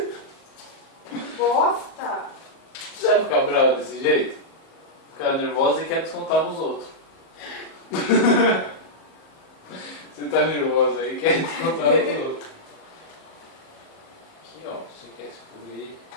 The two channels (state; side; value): late; right; 38 ms